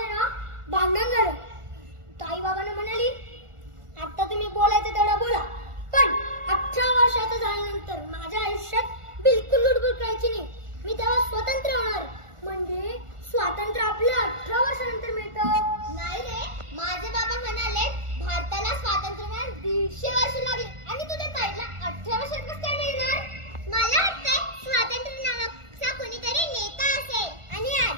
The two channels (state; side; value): late; left; 1.4 ms